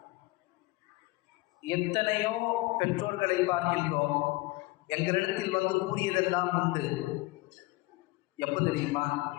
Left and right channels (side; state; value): right; quieter; 21.4 dB